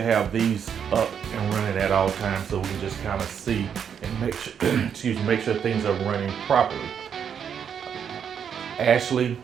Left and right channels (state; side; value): quieter; left; 7.8 dB